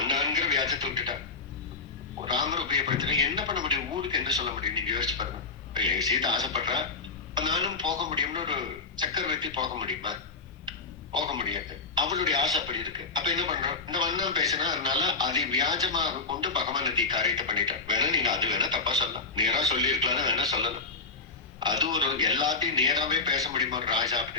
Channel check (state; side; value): quieter; right; 4.1 dB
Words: வியாஜத்தை விட்டுட்டா. ராமர் உபயோகப்படுத்தினா என்ன பண்ண முடியும்? ஊருக்கு என்ன சொல்ல முடியும்? நீங்க யோசிச்சு பாருங்க. எங்க சீதை ஆசைப்படுறா, நானும் போக முடியும்னு ஒரு சக்கரவர்த்தி போக முடியுமா? போக முடியாது. அவளுடைய ஆசை அப்படி இருக்கு. அப்ப என்ன பண்றோம்? இந்த வண்ணம் பேசினா அதனால அதை வியாஜமாக கொண்டு பகவான் நதி காரியத்தை பண்ணிட்டார். வேணா நீங்க அது வேணா தப்பா சொல்லலாம், நேரா சொல்லி இருக்கலாம்னு வேணா சொல்லலாம். அது ஒரு எல்லாத்தையும் நேராவே பேச முடியுமா ஒரு ராஜா